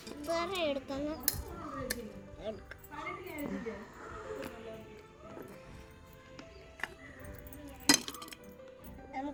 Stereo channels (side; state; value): both; identical; correlation 1.00